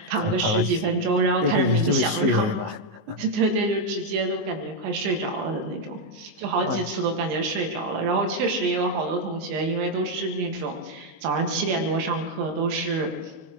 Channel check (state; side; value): late; left; 19 ms